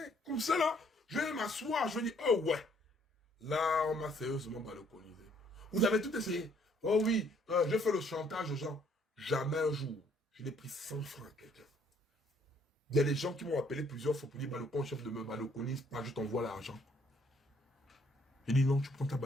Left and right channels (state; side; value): normal; both; correlation 0.64